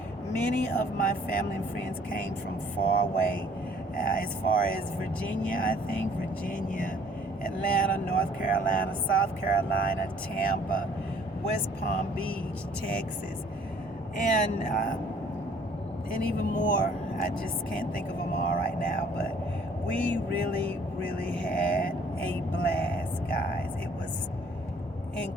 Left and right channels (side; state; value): both; normal; correlation 0.58